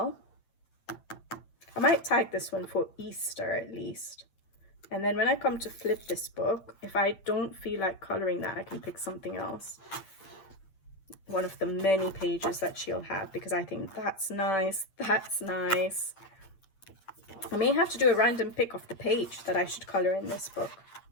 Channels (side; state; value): right; late; 8.9 ms